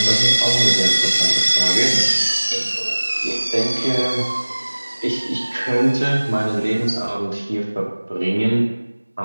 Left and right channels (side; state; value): both; inverted; correlation -1.00